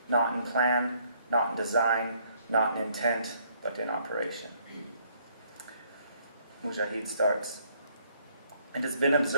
Not in plan, not in design, not in intent, but in operation. Mujahid starts. It has been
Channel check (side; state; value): both; inverted; correlation -0.66